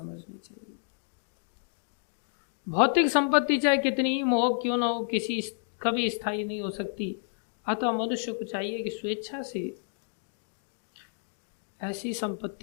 चाहिए। भौतिक संपत्ति चाहे कितनी ही मोहक क्यों न हो, किसी कभी स्थायी नहीं हो सकती। अतः मनुष्य को चाहिए कि स्वेच्छा से ऐसी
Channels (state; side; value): silent; right; digital silence